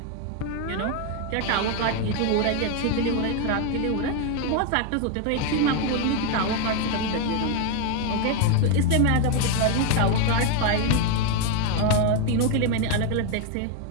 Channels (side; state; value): both; different; correlation 0.01